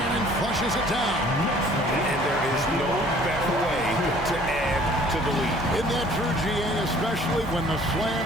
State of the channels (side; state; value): left; noise; hum, 18 dB below the sound